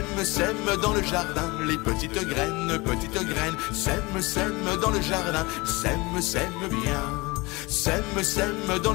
sème dans le jardin, les petites graines, sème, sème dans le jardin, sème, sème bien. Sème, sème dans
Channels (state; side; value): quieter; right; 24.0 dB